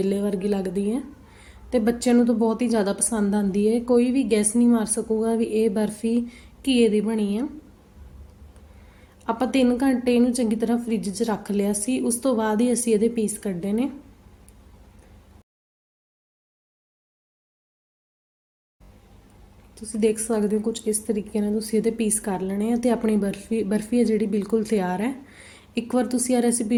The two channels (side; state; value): both; identical; correlation 1.00